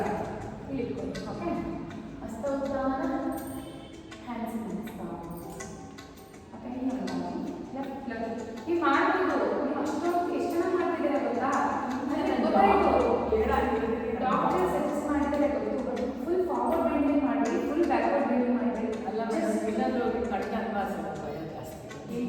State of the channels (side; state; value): both; identical; correlation 1.00